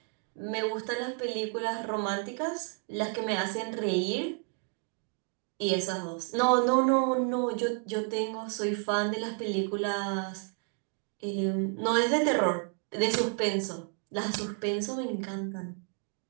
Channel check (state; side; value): quieter; left; 36.8 dB